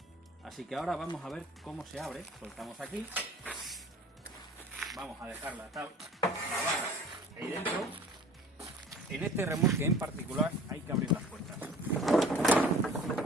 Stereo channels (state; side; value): normal; both; correlation 0.46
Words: Así que ahora vamos a ver cómo se abre. Soltamos aquí, vamos a dejar la barra ahí dentro. En este remolque en particular hay que abrir las puertas.